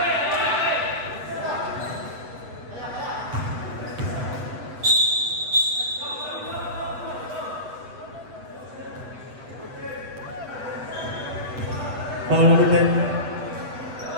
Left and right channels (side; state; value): left; late; 8.0 ms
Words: Foul number 10.